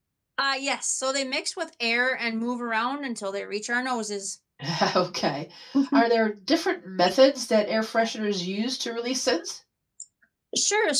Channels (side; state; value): both; identical; correlation 1.00